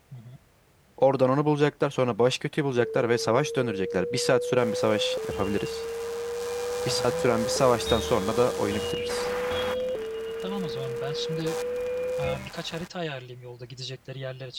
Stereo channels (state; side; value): identical; both; correlation 1.00